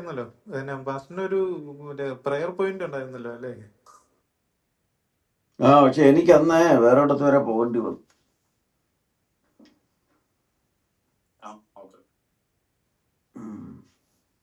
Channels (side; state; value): both; identical; correlation 1.00